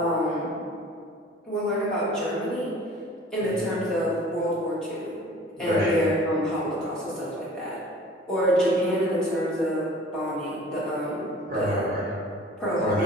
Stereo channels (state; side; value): normal; both; correlation 0.46